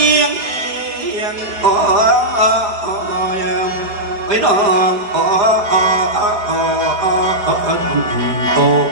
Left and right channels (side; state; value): left; late; 4.9 ms